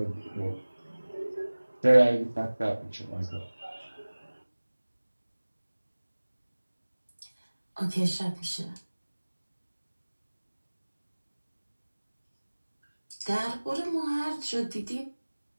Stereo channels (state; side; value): inverted; both; correlation -1.00